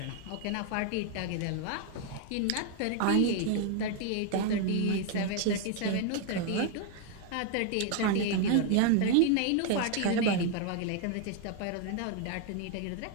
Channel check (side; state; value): both; different; correlation 0.00